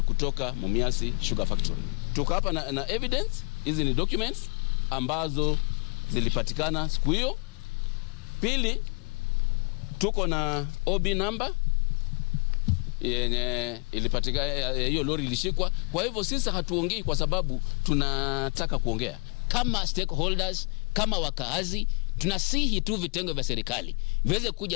kutoka Mumias Sugar Factory. Tuko hapa na evidence, hizi ni documents ambazo zilipatikana siku hiyo. Pili, tuko na OB number yenye ilipatikana, hiyo lori ilishikwa. Kwa hivyo sisi hatuongei kwa sababu tunataka kuongea. Kama stakeholders, kama wakaazi, tunasihi tu vitengo vya serikali viweze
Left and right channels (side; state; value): right; quieter; 32.9 dB